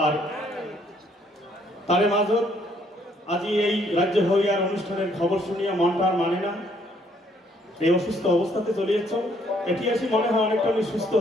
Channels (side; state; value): both; normal; correlation 0.66